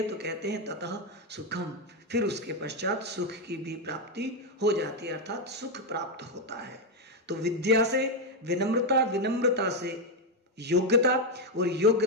तो कहते हैं ततः सुखम, फिर उसके पश्चात सुख की भी प्राप्ति हो जाती है, अर्थात सुख प्राप्त होता है। तो विद्या से विनम्रता, विनम्रता से योग्यता, और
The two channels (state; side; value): normal; both; correlation 0.05